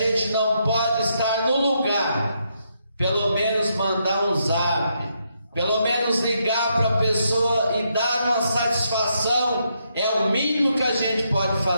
não pode estar no lugar, pelo menos mandar um zap, pelo menos ligar para a pessoa e dar uma satisfação, é o mínimo que a gente pode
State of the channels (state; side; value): inverted; both; correlation -0.78